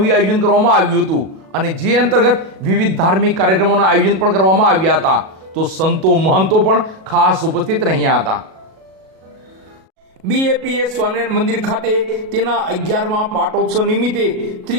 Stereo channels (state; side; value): late; left; 37 ms